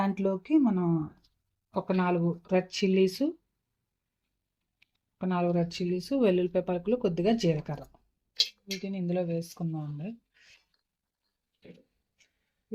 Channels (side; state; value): both; identical; correlation 1.00